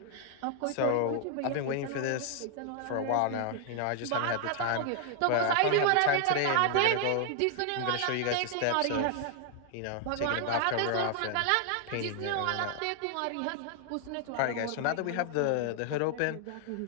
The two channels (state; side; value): different; both; correlation 0.00